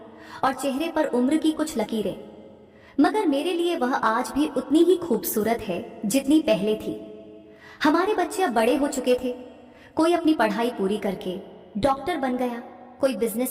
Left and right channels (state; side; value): identical; both; correlation 1.00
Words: और चेहरे पर उम्र की कुछ लकीरें। मगर मेरे लिए वह आज भी उतनी ही खूबसूरत है जितनी पहले थी। हमारे बच्चे अब बड़े हो चुके थे। कोई अपनी पढ़ाई पूरी करके डॉक्टर बन गया, कोई